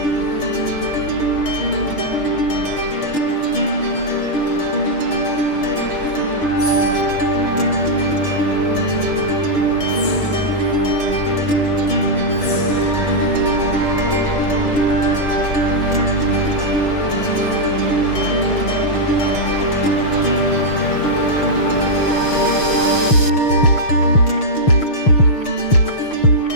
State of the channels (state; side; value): late; right; 6.7 ms